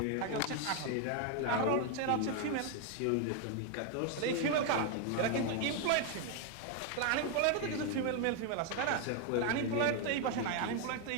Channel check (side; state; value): both; different; correlation 0.01